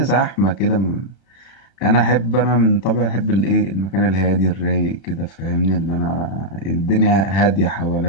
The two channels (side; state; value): right; late; 35 ms